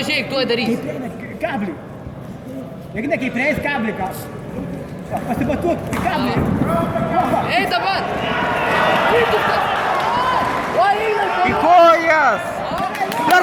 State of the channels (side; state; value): both; identical; correlation 1.00